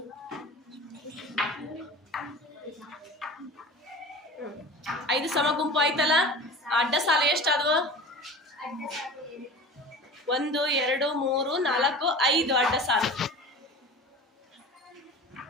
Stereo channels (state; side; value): normal; both; correlation 0.36